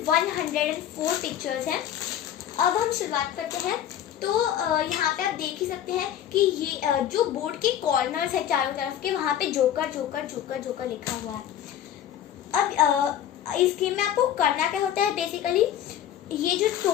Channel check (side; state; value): right; quieter; 10.5 dB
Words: 104 पिक्चर्स हैं। अब हम शुरुआत करते हैं। तो यहाँ पे आप देख ही सकते हैं कि ये जो बोर्ड के कॉर्नर्स है चारों तरफ के, वहाँ पे जोकर जोकर जोकर जोकर लिखा हुआ है। अब इस गेम में आपको करना क्या होता है, बेसिकली ये जो